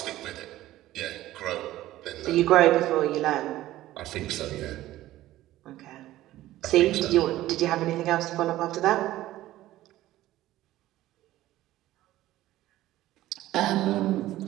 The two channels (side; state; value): left; quieter; 15.2 dB